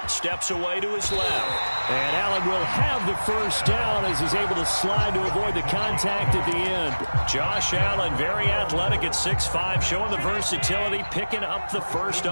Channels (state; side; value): inverted; both; correlation -1.00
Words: Steps away to his left. And Allen will have the 1st down as he's able to slide to avoid the contact at the end. Josh Allen, very athletic at 6'5", showing the versatility, picking up the 1st